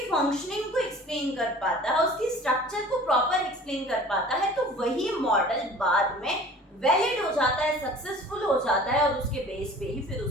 फंक्शनिंग को एक्सप्लेन कर पाता है, उसकी स्ट्रक्चर को प्रॉपर एक्सप्लेन कर पाता है, तो वही मॉडल बाद में वैलिड हो जाता है, सक्सेसफुल हो जाता है और उसके बेस पे ही फिर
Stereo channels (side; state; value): both; normal; correlation 0.45